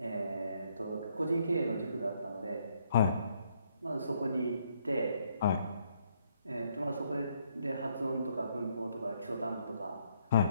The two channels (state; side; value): inverted; both; correlation -0.71